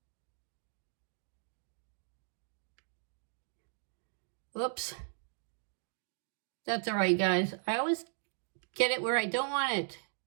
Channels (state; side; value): silent; left; digital silence